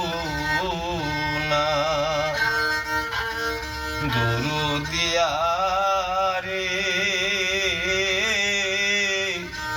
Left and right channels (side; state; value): both; identical; correlation 1.00